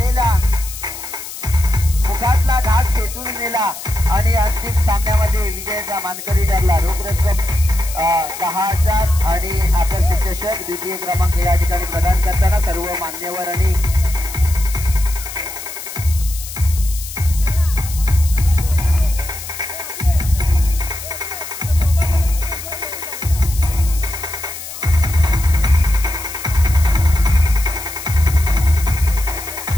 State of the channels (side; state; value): left; noise; hiss, 11 dB below the sound